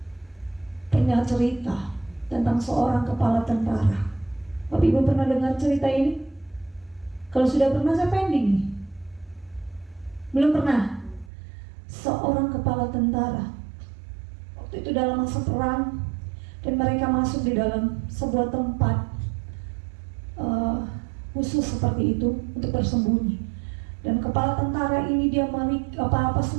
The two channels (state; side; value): drops out; left; at 11.3 s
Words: Pernah cerita tentang seorang kepala tentara. Bapak Ibu pernah dengar cerita ini? Kalau sudah pernah saya pending nih. Belum pernah? Seorang kepala tentara, waktu itu dalam masa perang, dan mereka masuk di dalam sebuah tempat khusus seperti itu untuk bersembunyi. Dan kepala tentara ini dia